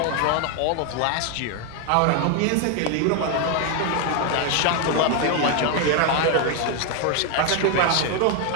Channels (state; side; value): different; both; correlation 0.01